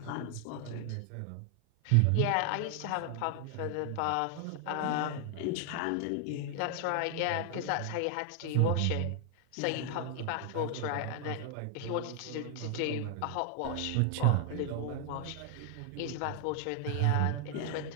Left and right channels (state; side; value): different; both; correlation 0.00